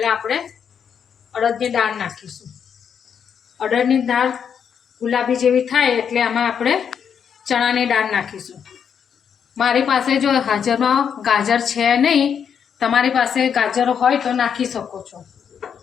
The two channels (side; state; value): right; quieter; 7.5 dB